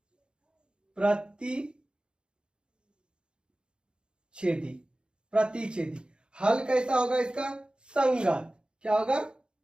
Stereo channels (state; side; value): late; left; 0.052 ms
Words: प्रतिच्छेदी, प्रतिच्छेदी। हल कैसा होगा इसका? संगत। क्या होगा?